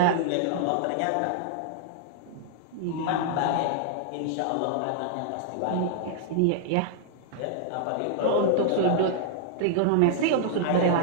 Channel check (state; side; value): different; both; correlation -0.01